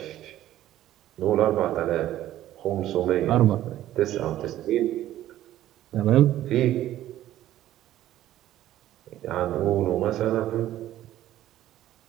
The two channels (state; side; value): quieter; left; 13.4 dB